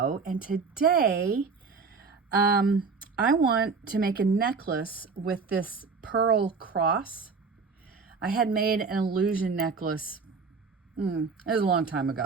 and today I want to make a necklace with this pearl cross. I had made an illusion necklace, it was a long time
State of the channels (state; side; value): quieter; left; 4.9 dB